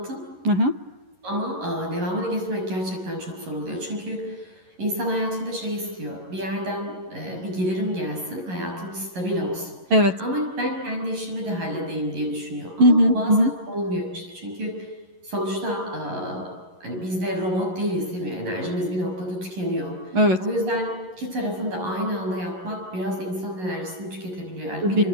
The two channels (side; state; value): left; late; 11 ms